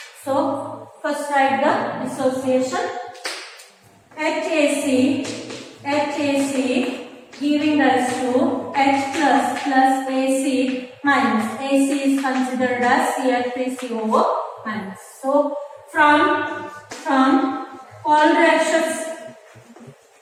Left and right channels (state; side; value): identical; both; correlation 1.00